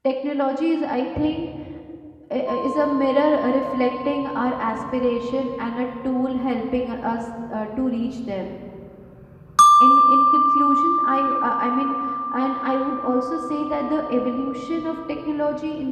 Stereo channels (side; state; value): both; identical; correlation 1.00